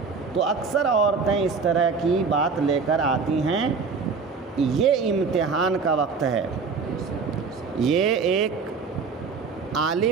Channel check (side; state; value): left; quieter; 5.0 dB